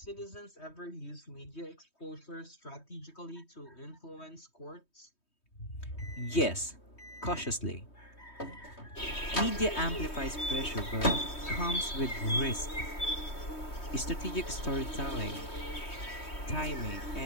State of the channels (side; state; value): right; late; 3.2 ms